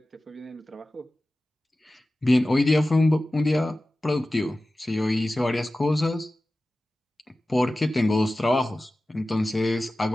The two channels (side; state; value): both; normal; correlation 0.96